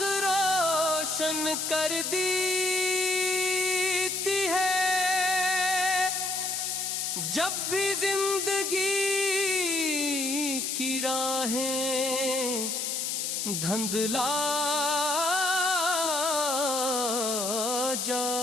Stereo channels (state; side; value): noise; left; hiss, 1 dB below the sound